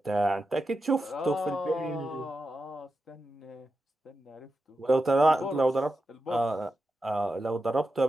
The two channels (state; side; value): normal; both; correlation 0.89